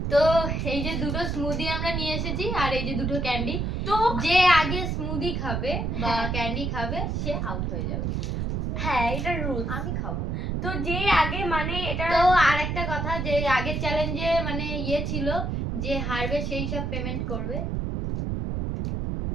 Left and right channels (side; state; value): right; noise; rumble, 1 dB below the sound